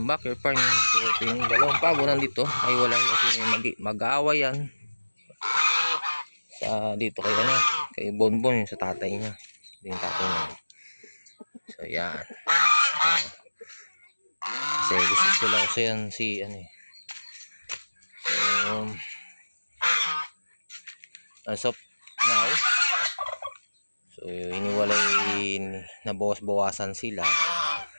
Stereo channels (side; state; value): both; inverted; correlation -1.00